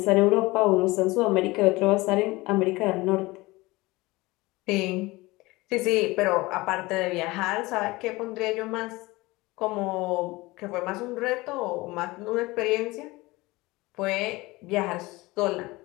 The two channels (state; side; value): quieter; right; 21.5 dB